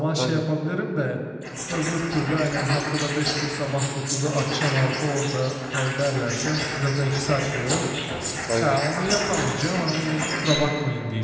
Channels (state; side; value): identical; both; correlation 1.00